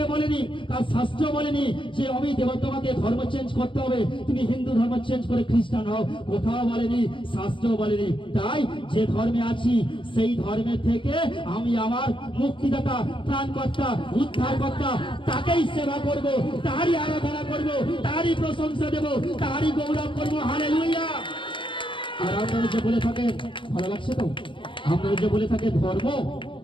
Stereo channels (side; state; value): right; late; 0.25 ms